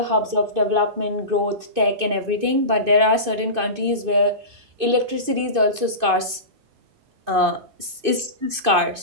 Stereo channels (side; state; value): left; late; 2.5 ms